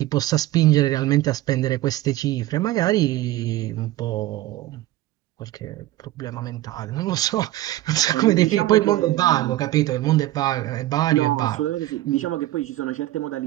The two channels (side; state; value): left; quieter; 15.8 dB